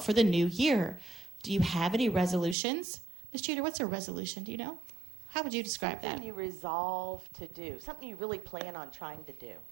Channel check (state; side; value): drops out; left; at 2.6 s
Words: for the new year? Do you have any resolutions?" Ms. Jeter, what's a resolution? Do you know? How would you describe Something that? you resolve to do. Something you really plan on trying to do